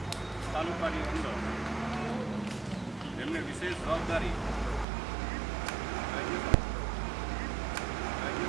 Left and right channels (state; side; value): drops out; left; at 4.9 s